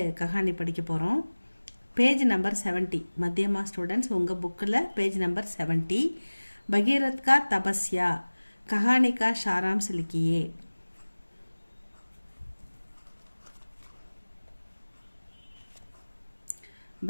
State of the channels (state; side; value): inverted; both; correlation -1.00